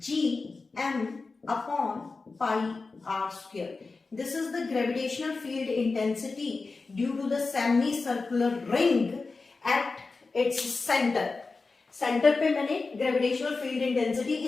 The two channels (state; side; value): quieter; right; 4.0 dB